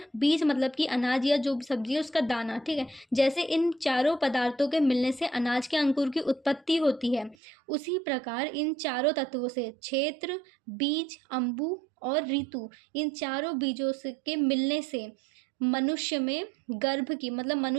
बीज मतलब कि अनाज या जो भी सब्जी है उसका दाना, ठीक है। जैसे इन चारों पदार्थों के मिलने से अनाज के अंकुर की उत्पत्ति होती है, उसी प्रकार इन चारों तत्वों से क्षेत्र, बीज, अम्बु और ऋतु, इन चारों बीजों से के मिलने से मनुष्य में गर्भ की मतलब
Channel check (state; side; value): drops out; left; at 7.4 s